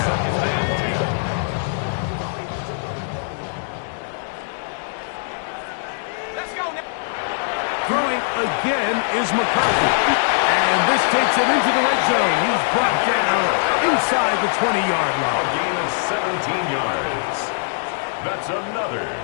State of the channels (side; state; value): right; silent; digital silence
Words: Throwing again is McCarthy. And this takes him into the red zone. He's brought down inside the 20-yard line. A gain of 17 yards. That's another